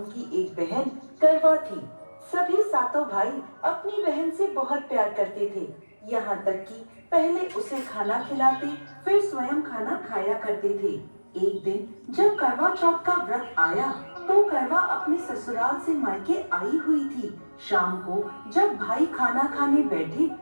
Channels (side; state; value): both; inverted; correlation -1.00